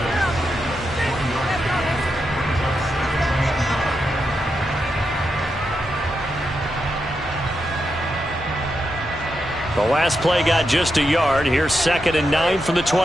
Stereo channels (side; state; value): both; normal; correlation 0.85